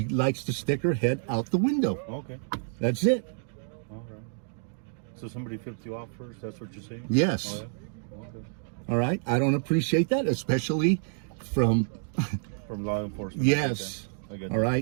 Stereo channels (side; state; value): left; silent; digital silence